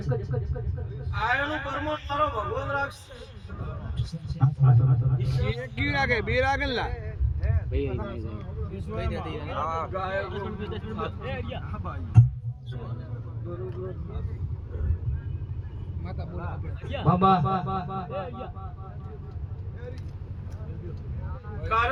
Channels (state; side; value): identical; both; correlation 1.00